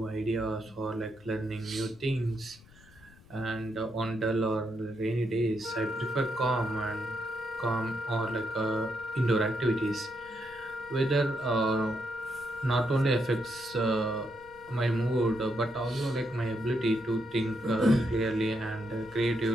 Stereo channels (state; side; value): noise; left; rumble, 24 dB below the sound